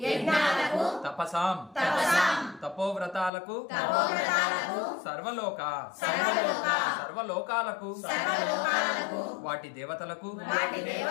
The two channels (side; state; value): right; drops out; at 3.3 s